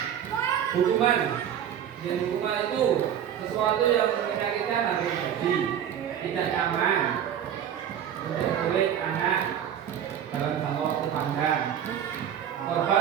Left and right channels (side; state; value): left; quieter; 9.5 dB